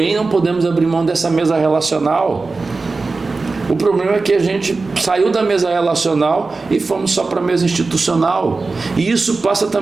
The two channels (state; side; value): quieter; left; 3.9 dB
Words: não podemos abrir mão dessa mesa relacional. O problema é que a gente saiu da mesa relacional e fomos só para a mesa institucional. E isso passa